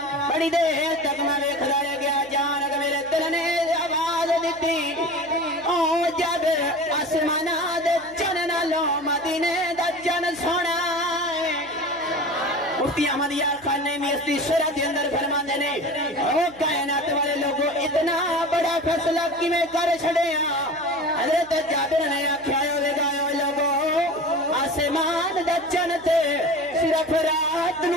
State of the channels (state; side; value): noise; right; hum, 25 dB below the sound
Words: بڑی دیر تک میں ویکھدا رہ گیا، جان کہ میرے دل نے آواز دتی، او جابر آسماناں دے چند نالوں مدینے دا چند سونا ہے۔ مفتی احمد یار خان نے میستی شرح کے اندر فرماندے نے او کائنات والے لوگوں اتنا بڑا فیصلہ کیویں کر چھڑیا۔ حضرت جابر نے آکھیا ہوے گا لوگوں آسمان دا چن تے صرف رات